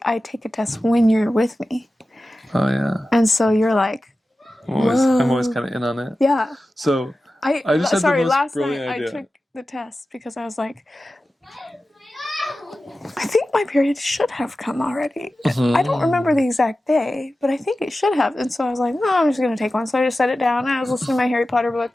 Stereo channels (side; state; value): both; normal; correlation 0.94